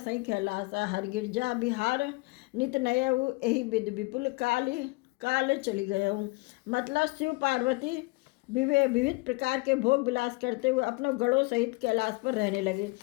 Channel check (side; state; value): right; quieter; 25.5 dB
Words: कैलासा। हर गिरजा बिहार नित नयऊ यही विध विपुल काल चली गयऊ। मतलब, शिव पार्वती विविध प्रकार के भोग विलास करते हुए अपनों गणों सहित कैलाश पर रहने लगे।